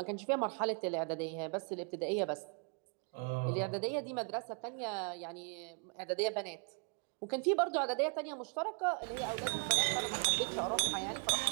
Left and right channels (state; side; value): quieter; left; 39.6 dB